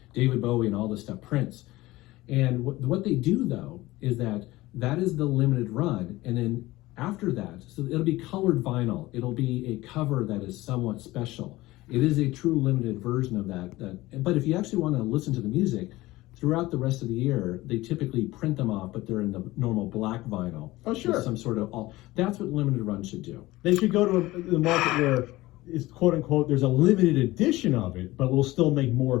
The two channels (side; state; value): right; quieter; 18.6 dB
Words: David Bowie and all this stuff, Prince. And what they do though is that is the limited run, and then after that, so it'll be colored vinyl. It'll be a cover that is somewhat special. It is a true limited version of that. But if you actually want to listen to the music, throughout the rest of the year, they typically print them off, but they're in the normal black vinyl. Oh, sure. Some sort of that's what limited run should do. They should go to the market where it's quote unquote there's a limited edition of it, but we'll still make